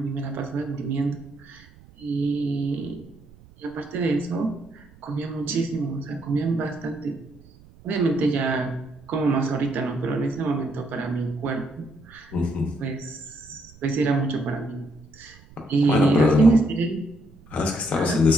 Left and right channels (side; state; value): right; noise; rumble, 24 dB below the sound